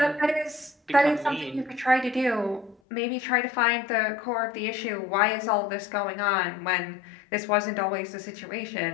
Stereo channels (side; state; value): right; drops out; at 2.8 s